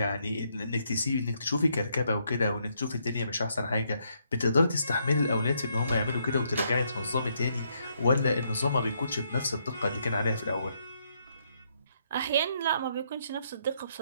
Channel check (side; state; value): both; inverted; correlation -0.74